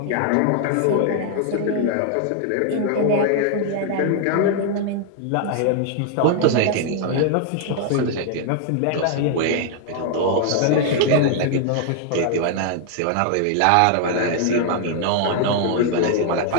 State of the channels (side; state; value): both; different; correlation 0.00